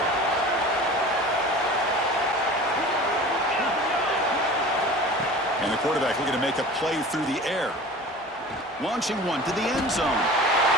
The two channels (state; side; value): normal; both; correlation 0.39